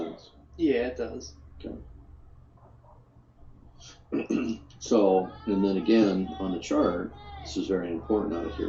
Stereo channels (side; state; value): both; identical; correlation 1.00